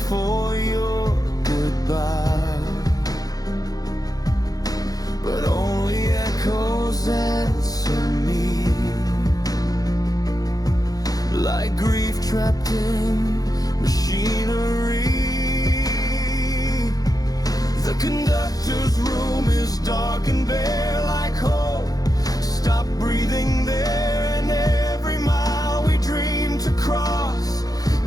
your goodbye, but only echoes answer me, like grief trapped in machinery. The conductor's room is dark and bare, like hope stop breathing there, and every mile we dreamed to cross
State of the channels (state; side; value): late; right; 0.18 ms